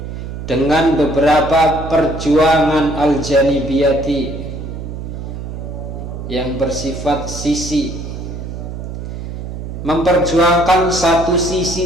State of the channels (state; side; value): noise; right; hum, 8 dB below the sound